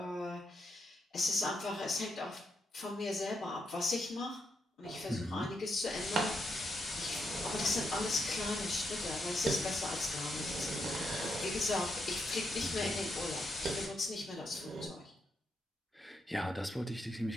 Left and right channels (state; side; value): normal; both; correlation 0.81